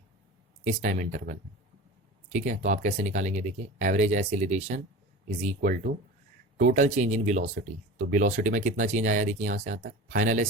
इस टाइम इंटरवल में। ठीक है, तो आप कैसे निकालेंगे, देखिए average acceleration is equal to total change in velocity. तो वेलोसिटी में कितना चेंज आया, देखिए यहां से यहां तक फाइनल है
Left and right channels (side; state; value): both; normal; correlation 0.33